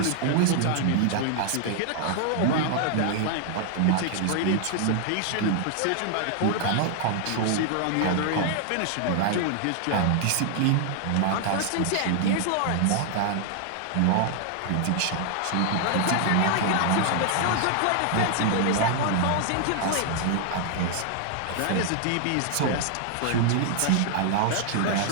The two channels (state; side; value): different; both; correlation 0.00